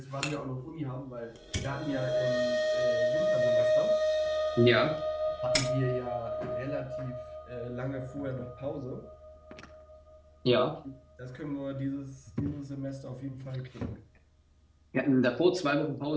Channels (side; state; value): both; identical; correlation 1.00